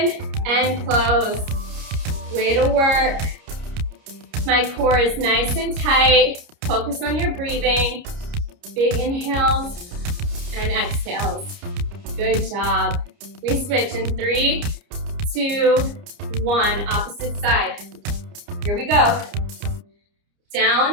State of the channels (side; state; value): left; late; 29 ms